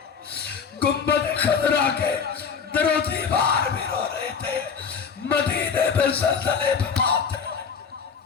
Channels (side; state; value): right; quieter; 6.2 dB